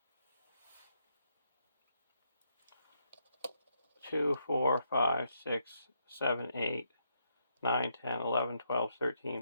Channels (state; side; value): inverted; both; correlation -0.76